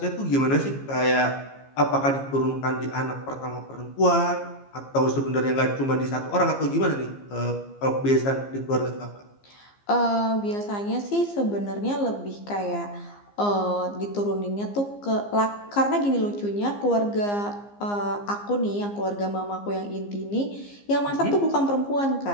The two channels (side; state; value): right; late; 15 ms